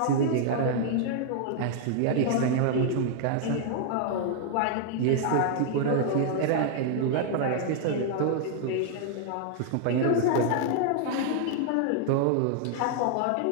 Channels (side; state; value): both; different; correlation 0.00